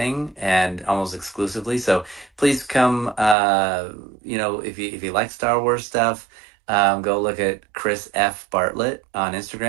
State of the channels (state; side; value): drops out; left; at 3.4 s